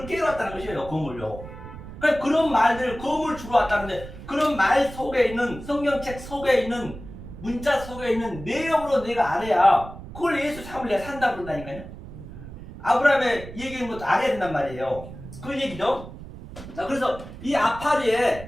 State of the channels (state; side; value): noise; right; rumble, 14 dB below the sound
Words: 깨러 왔다는 것이에요. 건물요. 그러니까 그런 말들, 건물 주러 왔다는데, 그런 말 속에 있는, 성경책 속에 있는, 문자 속에 있는 내용으로 내가 알아야 그걸 예수 삶을 내가 산다 그런다니까요. 아브라함의 얘기하는 것도 알아야 된단 말이에요. 그 얘기죠. 자, 그래서 이